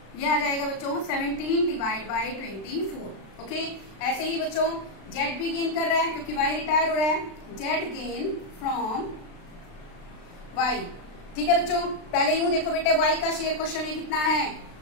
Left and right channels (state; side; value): late; right; 36 ms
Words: यह आ जाएगा बच्चों 17/24। ओके। ऐसे ही बच्चों जेड भी गेन कर रहा है क्योंकि वाई रिटायर हो रहा है, जेड गेन फ्रॉम वाई, ठीक है बच्चों। पहले यूं देखो बेटे वाई का शेयर क्वेश्चन में कितना है,